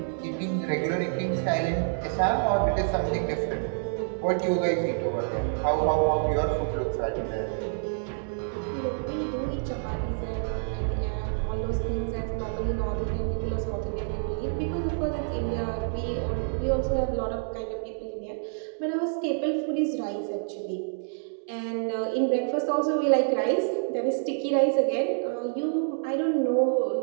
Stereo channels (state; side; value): silent; left; digital silence